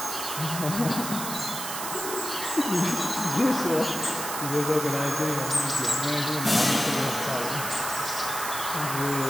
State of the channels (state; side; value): noise; right; hiss, 5 dB below the sound